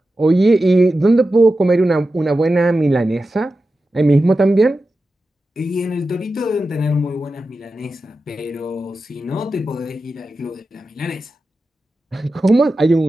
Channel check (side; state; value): both; normal; correlation 0.92